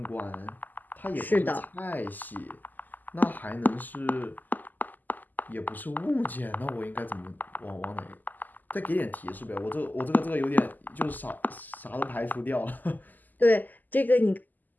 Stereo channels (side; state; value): right; late; 0.085 ms